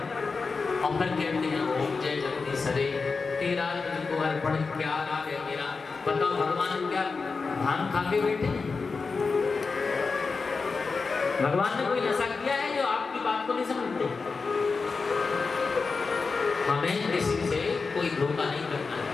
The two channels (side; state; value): right; quieter; 4.5 dB